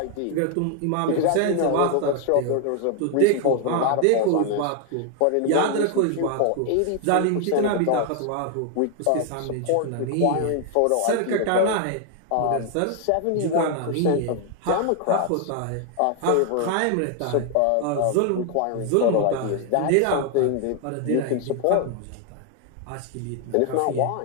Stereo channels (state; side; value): different; both; correlation 0.00